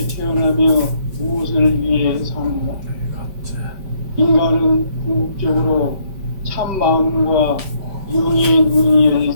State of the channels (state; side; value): late; left; 5.2 ms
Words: 태어나며 무엇을 위해 사는가? 인간은 궁극적으로 참 마음과 영의 눈이 열릴